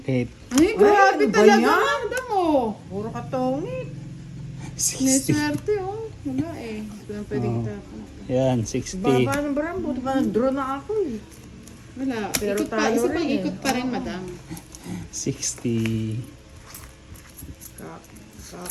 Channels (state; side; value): identical; both; correlation 1.00